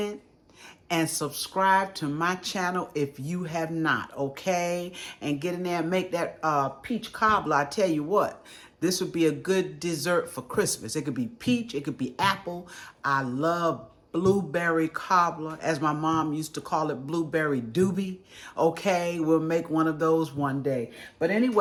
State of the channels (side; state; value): both; identical; correlation 1.00